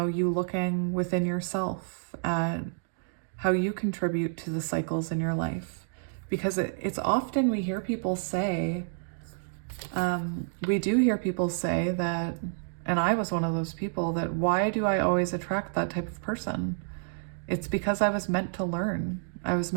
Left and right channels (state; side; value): silent; left; digital silence